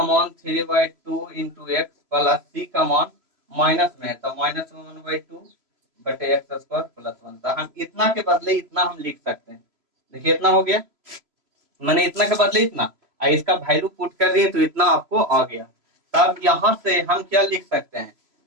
मान 3/2 इंटू एक्स प्लस सी का मान माइनस में है तो माइनस में 1/2 बटे एक्स स्क्वायर प्लस 1। तो हम इतना के बदले इतना हम लिख सकते हैं, देखिए इतना हो गया, मैंने इतना के बदले इतना, इसका वैल्यू पुट कर दिए तो इतना आपको आ गया। तब यहाँ से हम क्या लिख सकते हैं,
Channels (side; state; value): left; late; 3.0 ms